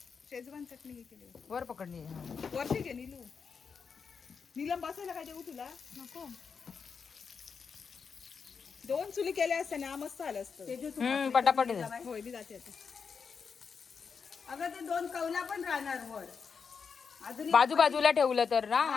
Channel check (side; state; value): right; quieter; 5.8 dB